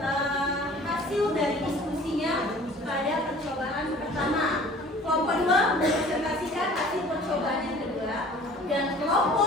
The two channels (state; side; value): normal; both; correlation 0.48